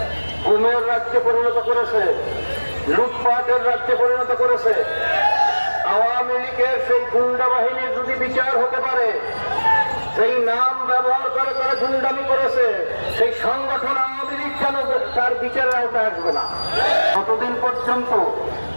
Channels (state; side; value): inverted; both; correlation -1.00